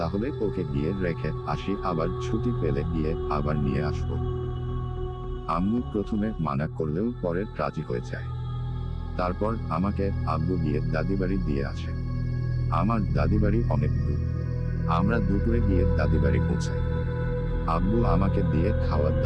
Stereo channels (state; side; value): identical; both; correlation 1.00